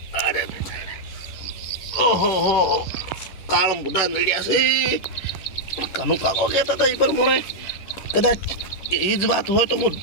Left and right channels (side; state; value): right; late; 11 ms